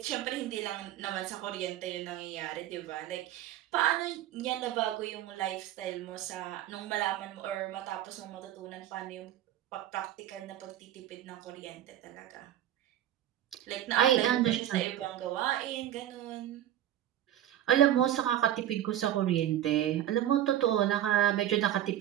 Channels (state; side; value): quieter; left; 12.0 dB